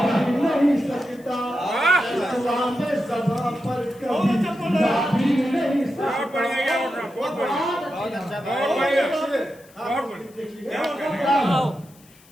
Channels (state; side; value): noise; left; hiss, 27 dB below the sound